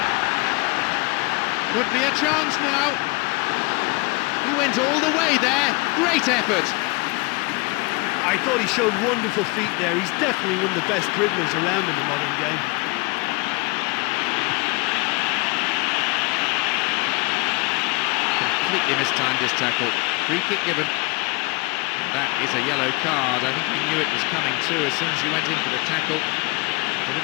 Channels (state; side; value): quieter; right; 26.4 dB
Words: Could be a chance now. He went all the way there. Great effort. I thought he showed wonderful feet there. He's definitely one of the best dribblers around in the modern game. Completely mistimed his tackle. Free kick given. And that is a yellow card. I think he knew it was coming too as soon as he went in for the tackle. Put